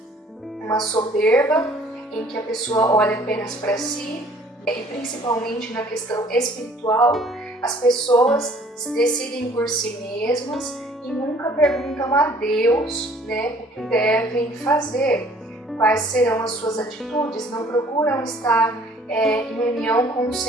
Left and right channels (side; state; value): both; normal; correlation 0.56